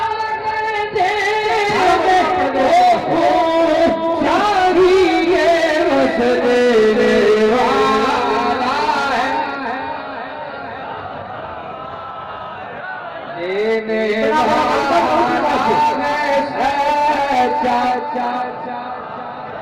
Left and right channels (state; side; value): identical; both; correlation 1.00